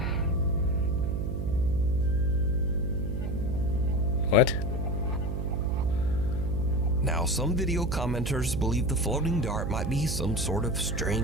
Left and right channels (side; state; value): right; noise; hum, 2 dB below the sound